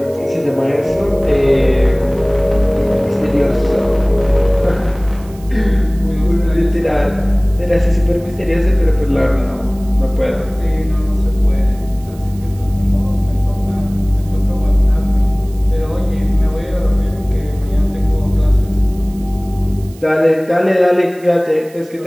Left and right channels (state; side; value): noise; right; hiss, 25 dB below the sound